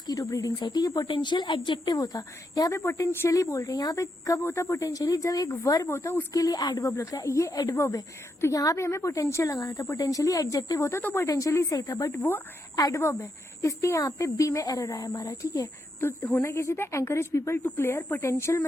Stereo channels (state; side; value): normal; both; correlation 0.81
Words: ब्रीडिंग साइट, ठीक है, पोटेंशियल एडजेक्टिव होता, यहाँ पे पोटेंशियली बोल रहे हैं। यहाँ पे कब होता पोटेंशियली, जब एक वर्ब होता उसके लिए एडवर्ब लगता है, ये एडवर्ब है, तो यहाँ पे हमें पोटेंशियल लगाना था, पोटेंशियली एडजेक्टिव होता तो पोटेंशियली सही था, बट वो एडवर्ब है, इसलिए यहाँ पे B में एरर आया हमारा, ठीक है। तो होना कैसे था, encourage people to clear potential